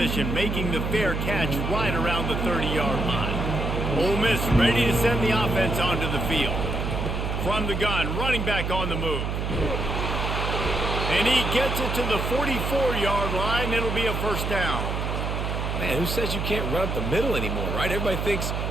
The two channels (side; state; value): right; noise; hum, 2 dB below the sound